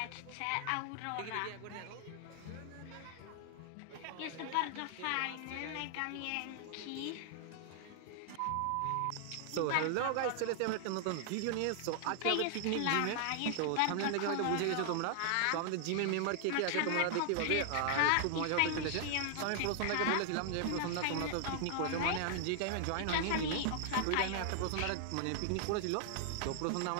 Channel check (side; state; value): both; different; correlation -0.01